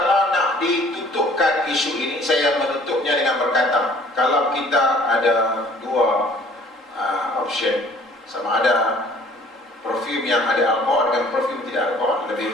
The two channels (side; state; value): both; normal; correlation 0.54